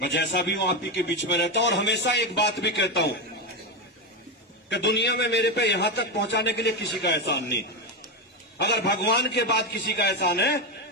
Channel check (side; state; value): both; normal; correlation 0.12